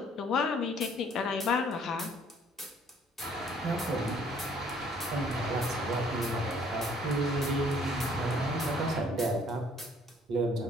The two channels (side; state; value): both; normal; correlation 0.60